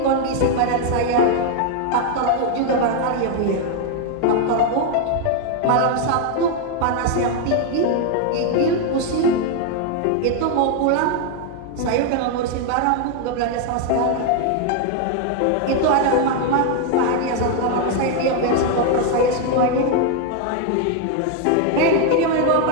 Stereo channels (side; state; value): both; different; correlation 0.01